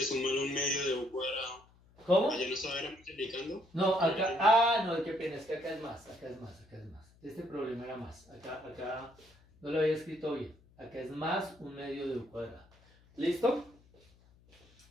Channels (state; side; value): noise; left; hum, 28 dB below the sound